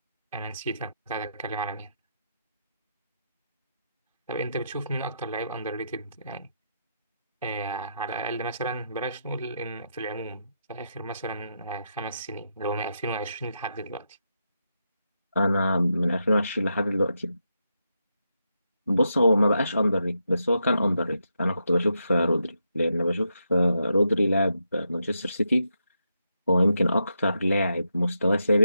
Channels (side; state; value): both; inverted; correlation -0.83